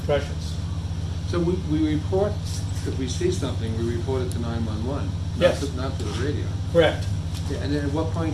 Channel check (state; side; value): identical; both; correlation 1.00